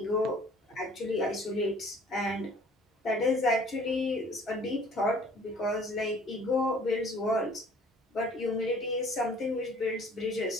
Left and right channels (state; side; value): normal; both; correlation 0.53